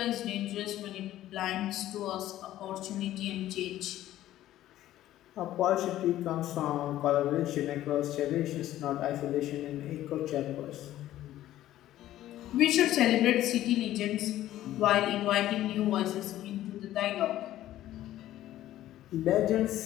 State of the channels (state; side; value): quieter; right; 13.7 dB